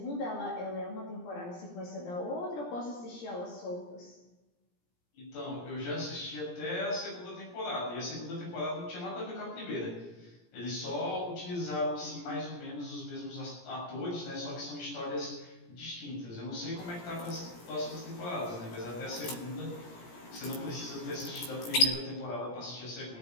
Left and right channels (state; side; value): late; right; 17 ms